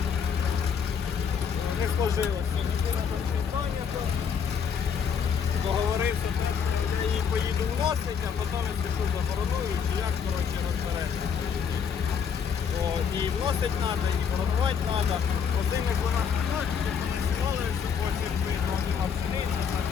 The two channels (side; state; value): right; quieter; 6.9 dB